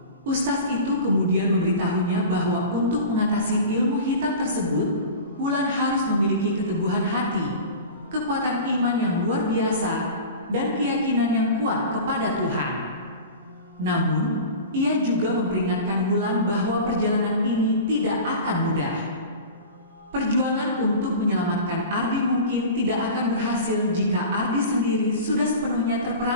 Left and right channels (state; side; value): inverted; both; correlation -0.34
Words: Ustaz itu kemudian memberitahunya bahwa untuk mengatasi ilmu hitam tersebut, Wulan harus memiliki keteguhan hati, kekuatan iman yang luar biasa, dan keyakinan yang kuat kepada Tuhan. Namun, ia juga memperingatkan Wulan bahwa perjalanan ini tidak akan mudah. Perjuangan untuk menyelamatkan Ardi mungkin tidak akan berhasil jika Ardi sendiri sudah sepenuhnya